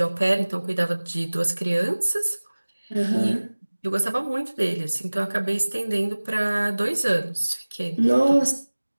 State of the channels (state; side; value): inverted; both; correlation -1.00